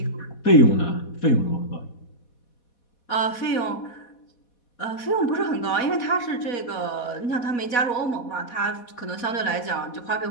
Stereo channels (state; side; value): late; right; 4.2 ms